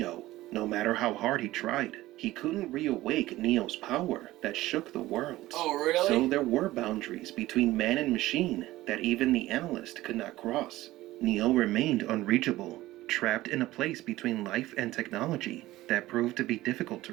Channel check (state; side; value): quieter; left; 16.8 dB